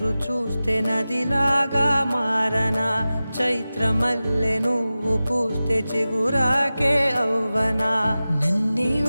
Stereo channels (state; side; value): inverted; both; correlation -0.95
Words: చూస్తే నదిలాగా మారనా, చైత్రమల్లె నువ్వు పూస్తే చిగురాకే అవ్వనా. నన్నే